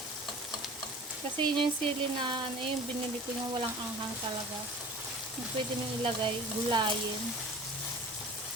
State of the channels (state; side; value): normal; both; correlation 0.41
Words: Kasi yun yung sili na ano yung binili ko yung walang anghang talaga. Pwede nyo ilagay, gulayin.